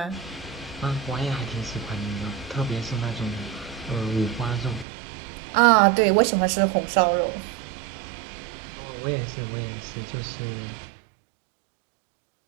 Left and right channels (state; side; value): drops out; left; at 4.9 s